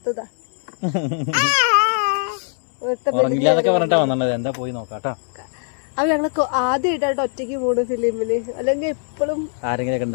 പറഞ്ഞിട്ടാ വന്നത്. എന്താ പോയി നോക്കാട്ടോ. അപ്പൊ ഞങ്ങള് ആദ്യമായിട്ടായിട്ട് ഒറ്റയ്ക്ക് പോണു ഫിലിമിന്. അല്ലെങ്കിൽ എപ്പോഴും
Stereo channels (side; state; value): right; silent; 63 dB below the other